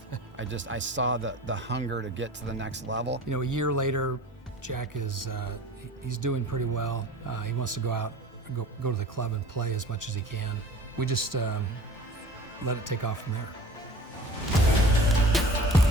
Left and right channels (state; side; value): normal; both; correlation 0.42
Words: I saw the hunger to get to the next level. You know, a year later, Jack is he's doing pretty well. He wants to go out, go to the club and play as much as he can. We just let it take off from there.